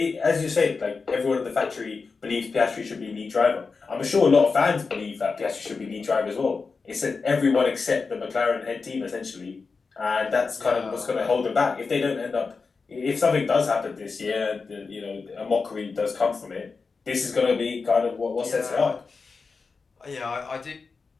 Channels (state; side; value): quieter; right; 4.6 dB